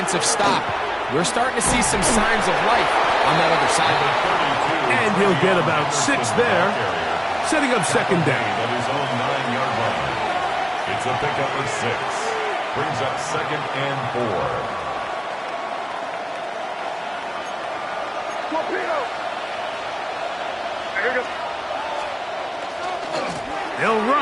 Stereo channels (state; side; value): identical; both; correlation 1.00